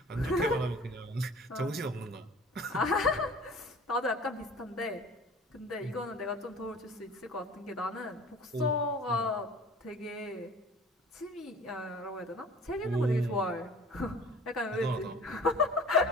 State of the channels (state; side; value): normal; both; correlation 0.45